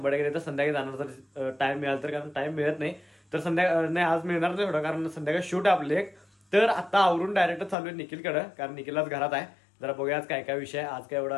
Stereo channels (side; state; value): right; drops out; at 7.8 s